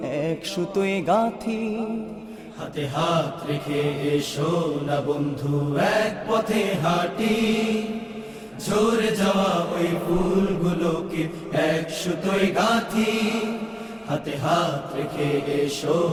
এক সুতোয় গাঁথি। হাতে হাত রেখে এসো না বন্ধু, এক পথে হাঁটি। ঝরে যাওয়া ওই ফুলগুলোকে এক সুতোয় গাঁথি। হাতে হাত রেখে এসো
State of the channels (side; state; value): both; identical; correlation 1.00